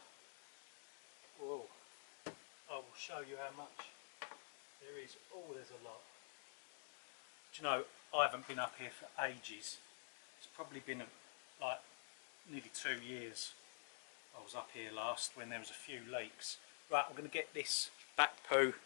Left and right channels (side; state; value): right; silent; digital silence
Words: Whoa. I will show you how much there is. Oh, there's a lot. Do you know, I haven't been up here for ages. It's probably been like nearly 2 years. I was up here last when there was a few leaks. Right, I'm going to get this bat poo